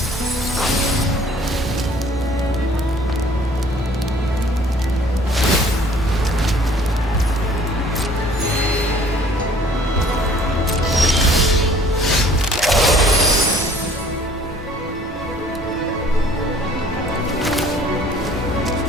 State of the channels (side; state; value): both; normal; correlation 0.55